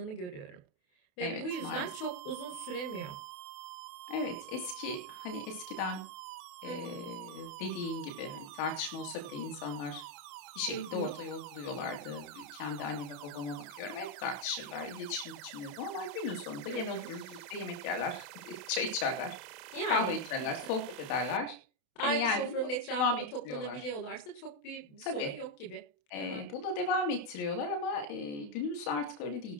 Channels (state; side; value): late; right; 28 ms